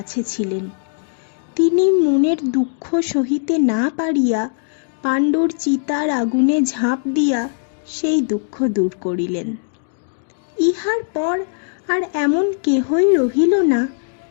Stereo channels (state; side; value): silent; right; digital silence